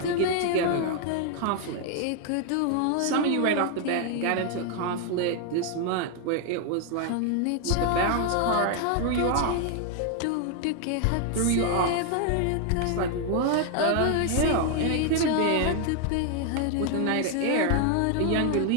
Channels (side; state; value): both; different; correlation 0.00